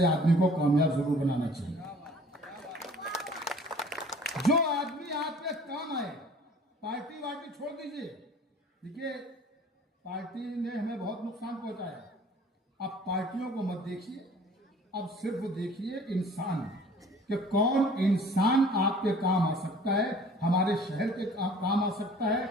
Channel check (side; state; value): both; normal; correlation 0.50